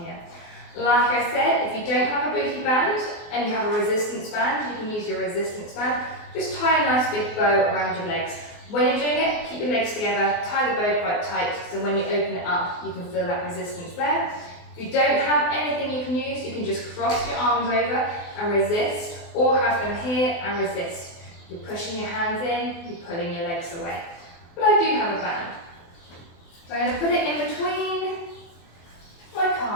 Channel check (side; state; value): right; late; 24 ms